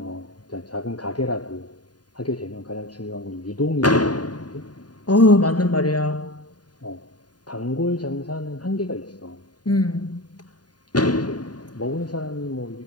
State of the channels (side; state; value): right; late; 0.70 ms